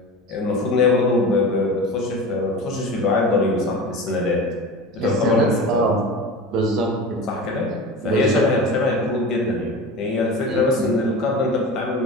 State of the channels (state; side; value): normal; both; correlation 0.31